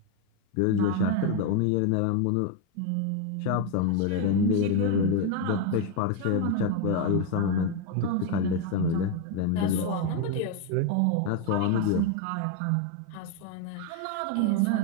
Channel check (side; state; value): both; different; correlation 0.02